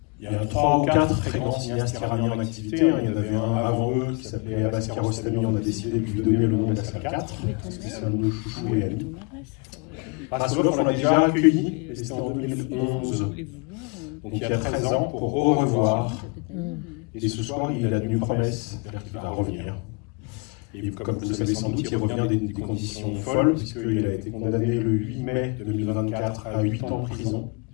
Il y a 3 ou 4 très grands cinéastes iraniens en activité. Il y en avait un avant eux qui s'appelait Abbas Kiarostami. On a décidé de lui donner le nom de la salle 4, parce que c'est un nom de chouchou et ami. Raskolov, on l'a déjà accueilli, et c'était en 2011. Donc il y a 13 ans, pour au revoir. Et ce soir, il a une promesse, c'est-à-dire qu'il va revenir. Et comme vous le savez sans doute, il revient dans des conditions folles, puisqu'il a été condamné le 8 mai 2024 à 8 ans de prison,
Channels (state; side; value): quieter; right; 32.7 dB